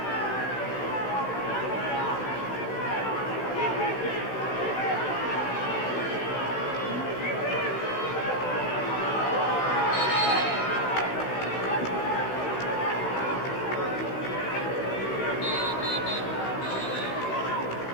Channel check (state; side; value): late; right; 16 ms